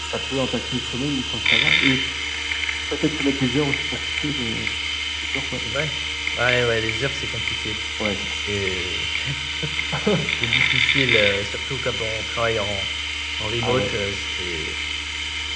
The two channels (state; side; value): identical; both; correlation 1.00